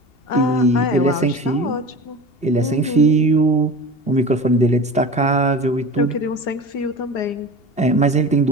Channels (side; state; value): right; late; 2.8 ms